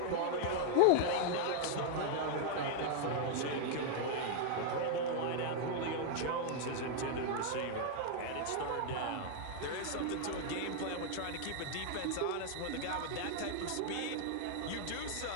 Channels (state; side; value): different; both; correlation 0.00